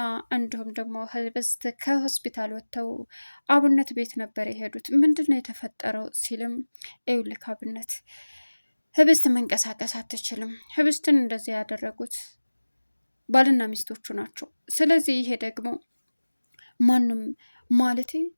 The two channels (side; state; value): both; inverted; correlation -1.00